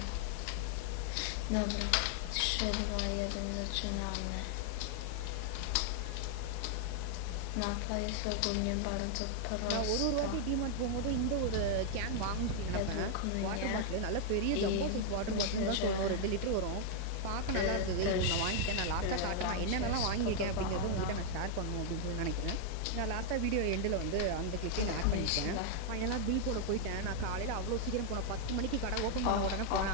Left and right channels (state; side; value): different; both; correlation 0.00